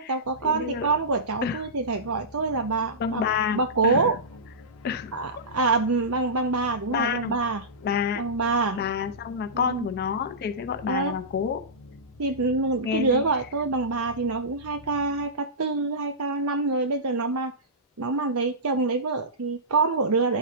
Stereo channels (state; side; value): normal; both; correlation -0.18